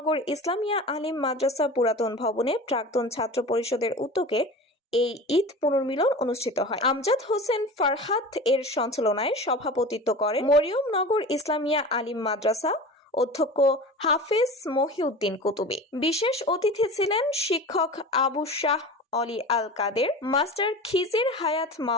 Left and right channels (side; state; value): both; normal; correlation 0.34